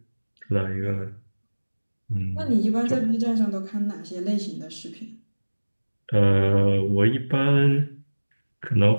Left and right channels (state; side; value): inverted; both; correlation -1.00